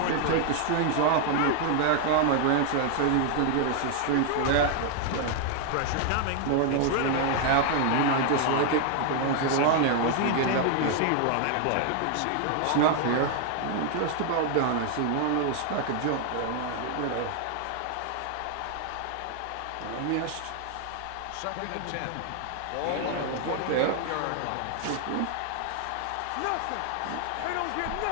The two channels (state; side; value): different; both; correlation 0.00